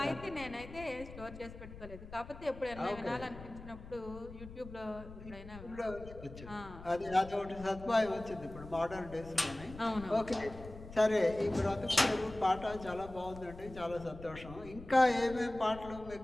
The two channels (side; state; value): left; noise; rumble, 14 dB below the sound